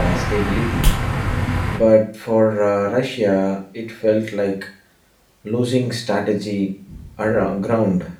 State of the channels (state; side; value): identical; both; correlation 1.00